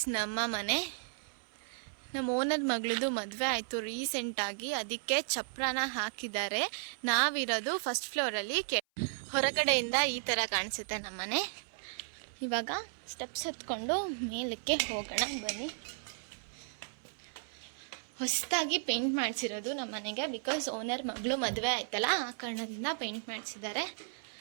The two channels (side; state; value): left; silent; 55 dB below the other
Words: ನಮ್ಮ ಮನೆ. ನಮ್ಮ ಓನರ್ ಮಗಳದು ಮದುವೆ ಆಯಿತು ರೀಸೆಂಟಾಗಿ, ಅದಕ್ಕೆ ಚಪ್ರನ ಹಾಕಿದ್ದಾರೆ. ನಾವಿರೋದು ಫಸ್ಟ್ ಫ್ಲೋರಲ್ಲಿ. ಹೊರಗಡೆಯಿಂದ ಈ ಥರ ಕಾಣಿಸುತ್ತೆ ನಮ್ಮನೆ. ಇವಾಗ ಸ್ಟೆಪ್ಸ್ ಎತ್ಕೊಂಡು ಮೇಲಕ್ಕೆ ಹೋಗೋಣ ಬನ್ನಿ. ಹೊಸದಾಗಿ ಪೇಂಟ್ ಮಾಡಿಸಿರೋದು ನಮ್ಮ ಮನೆಗೆ, ಬಿಕಾಸ್ ಓನರ್ ಮಗಳು ಮದುವೆ ಆಯ್ತಲ್ಲ, ಆ ಕಾರಣದಿಂದ ಪೇಂಟ್ ಮಾಡಿಸಿದ್ದಾರೆ.